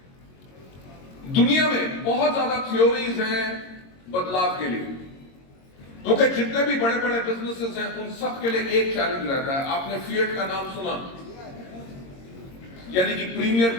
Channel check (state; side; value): late; right; 22 ms